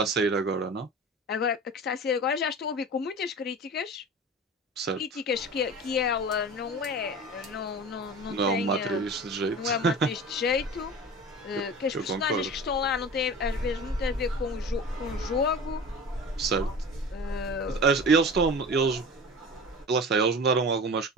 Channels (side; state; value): both; normal; correlation 0.36